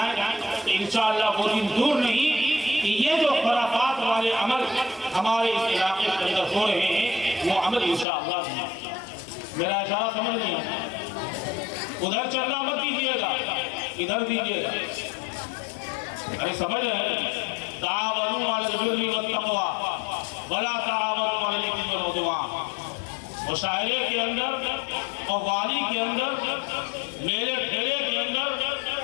तो इंशाअल्लाह वो दिन दूर नहीं कि ये जो खराफात वाले अमल हमारे इस इलाके के अंदर हो रहे हैं वो अमल इंशाअल्लाह नहीं। मेरा इशारा समझ लिया, उधर चलना मत दीजिएगा, इधर दीजिएगा। अरे समझ रहे, तावनु अलल बिर्रि वत्तक़वा वला तावनु अलल इस्मि वल उद्वान। मुशायरे के अंदर और वाली के अंदर, मेरे ठेले के अंदर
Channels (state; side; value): drops out; right; at 8.1 s